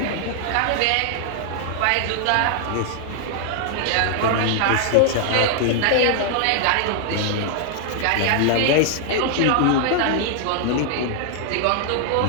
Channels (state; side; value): different; both; correlation 0.00